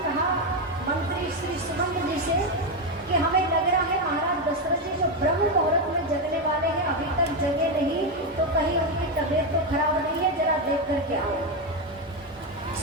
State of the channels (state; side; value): normal; both; correlation 0.08